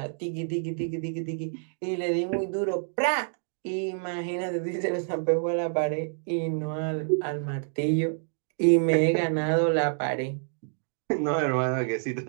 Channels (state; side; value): silent; left; digital silence